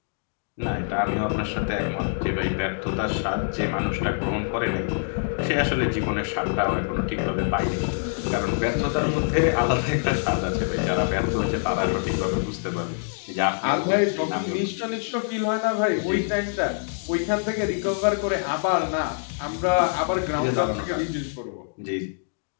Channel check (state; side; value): silent; right; digital silence